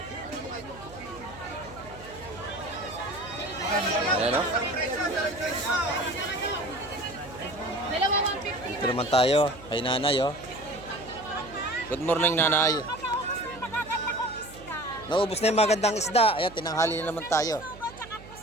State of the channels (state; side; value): noise; right; hum, 18 dB below the sound